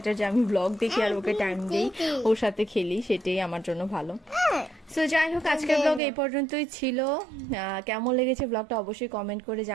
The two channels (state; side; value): drops out; left; at 6.0 s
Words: যে আমি ব্লগ দেখি আর ওকে টাইম দিই, ওর সাথে খেলি, সেটাই আমার জন্য ভালো। সো যাই হোক, আজকের ব্লগ এই পর্যন্তই ছিল। কেমন লেগেছে ব্লগটা অবশ্যই কমেন্ট করে